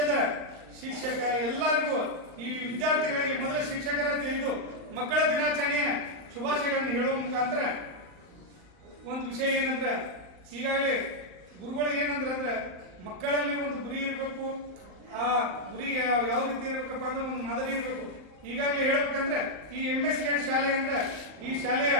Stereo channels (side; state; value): left; late; 39 ms